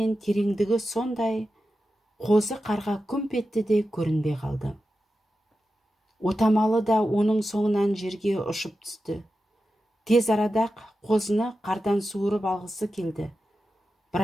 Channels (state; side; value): normal; both; correlation 0.91